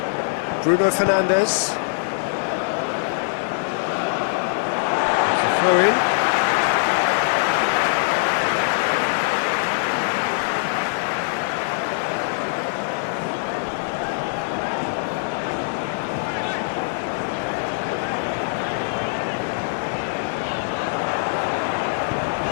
Bruno Fernandes. It's a throw-in.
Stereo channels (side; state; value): right; silent; 64 dB below the other